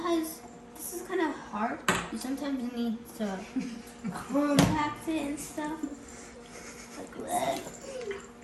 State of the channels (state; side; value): identical; both; correlation 1.00